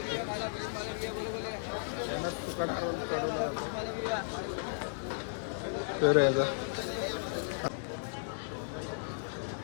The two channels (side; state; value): right; silent; digital silence